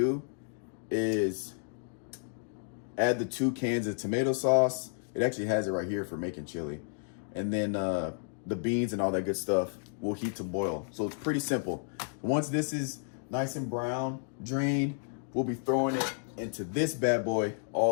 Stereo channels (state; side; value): silent; right; digital silence